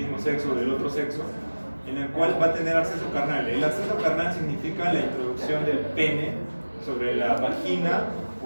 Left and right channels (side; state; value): both; inverted; correlation -1.00